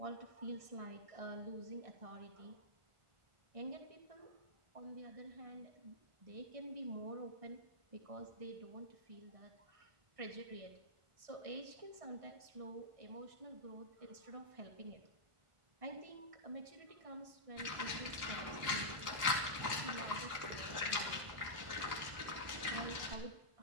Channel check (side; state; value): left; late; 1.4 ms